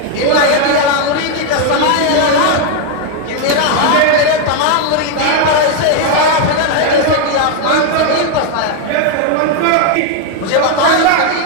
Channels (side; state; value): both; different; correlation 0.01